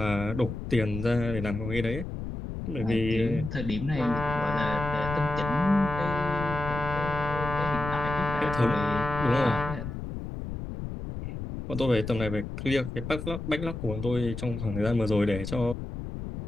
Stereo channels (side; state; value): left; noise; rumble, 7 dB below the sound